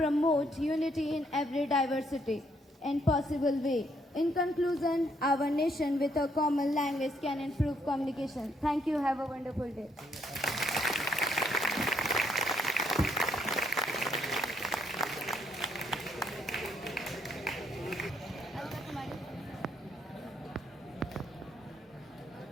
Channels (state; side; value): normal; both; correlation 0.71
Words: unity in every diversity and possible way. In conclusion, our nation with a common language can improve communication. Thank you. Have a wonderful day.